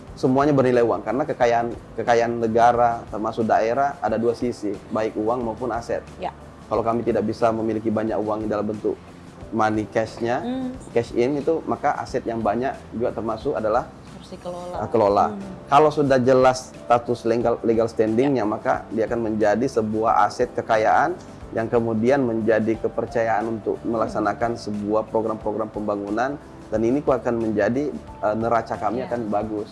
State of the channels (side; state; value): both; identical; correlation 1.00